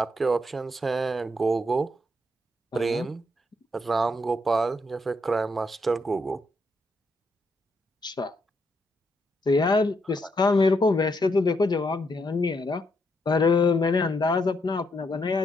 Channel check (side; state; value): both; normal; correlation 0.77